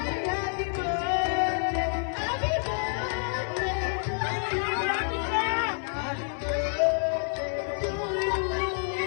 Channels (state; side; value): silent; right; 58 dB below the other